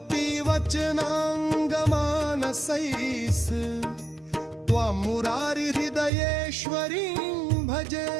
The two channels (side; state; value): left; drops out; at 6.1 s